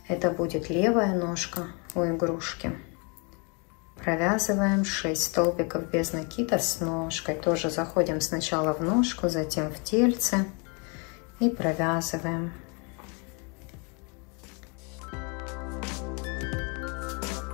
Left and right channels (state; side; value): quieter; right; 33.4 dB